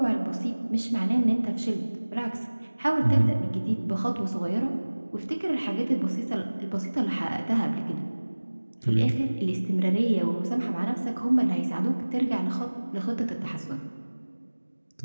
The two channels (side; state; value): both; inverted; correlation -1.00